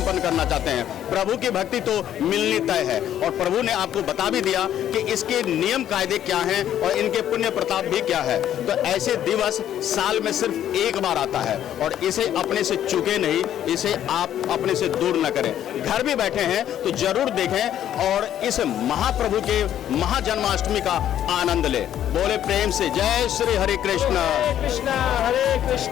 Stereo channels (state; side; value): quieter; right; 10.9 dB